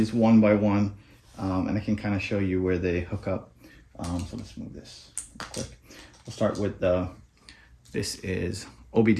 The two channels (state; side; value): identical; both; correlation 1.00